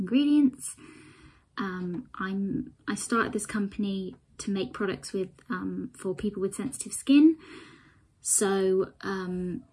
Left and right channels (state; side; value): identical; both; correlation 1.00